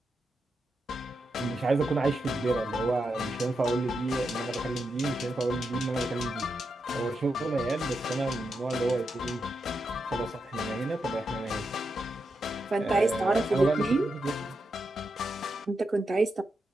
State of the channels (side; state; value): both; normal; correlation 0.85